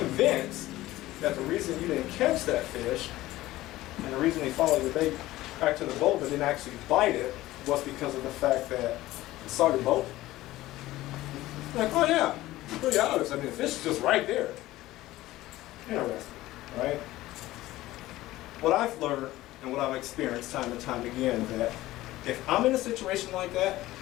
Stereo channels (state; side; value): quieter; right; 16.7 dB